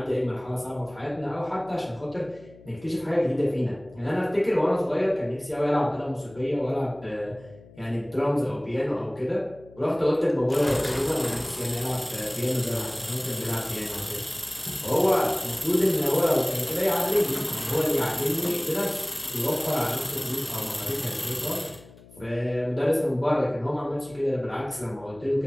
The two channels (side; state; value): left; noise; hum, 22 dB below the sound